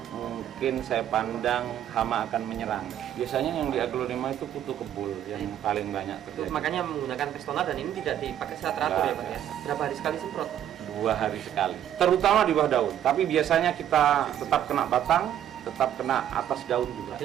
mungkin saya pandang hama akan menyerang. Biasanya yang di aglonema itu kutu kebul yang paling banyak terjadi. Makanya menggunakan Pestona, dan ini tidak dipakai secara teratur ya Pak ya. Berapa hari sekali semprot? 2 hari sekali, terutama di bawah daun. Tapi biasanya kita tetap kena batang, tetap kena atas daun juga.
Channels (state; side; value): quieter; left; 10.8 dB